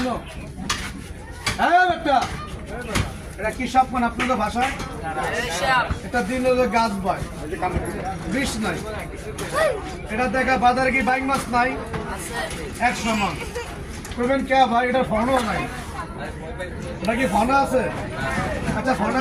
হ্যাঁ একটা এটা কি সাপ কোন আপনাদের ভাষায়? এটা দিন হলো গাছ ভাই, বিষ নাই। এটা দেখা বাজারে কি বাইক মাছ নাই 100 মাছ করবেন কে ভাই? এটা ফোনও নাই, এটা কি ফোন আছে? আচ্ছা ফোন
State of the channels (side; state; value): both; identical; correlation 1.00